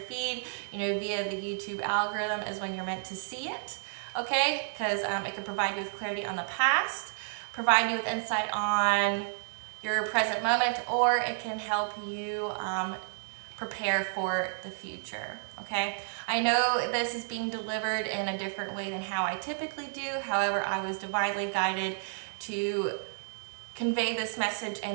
feed, via the YouTube algorithm is when you're meant to see it. Okay, because it can provide you with clarity on the past, provide you with insight on your present moment, or it can help you prepare for the future. Okay, I know this is being delivered in a different way than how I typically do. However, I was divinely guided to convey this message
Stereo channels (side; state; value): left; silent; 57 dB below the other